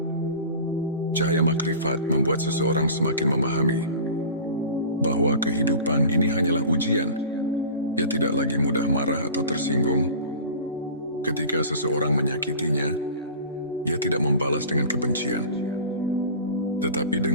Cahaya makrifat membuat seseorang semakin memahami bahwa kehidupan ini hanyalah ujian. Ia tidak lagi mudah marah atau tersinggung. Ketika seseorang menyakitinya, ia tidak membalas dengan kebencian. Tetapi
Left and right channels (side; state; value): both; inverted; correlation -0.38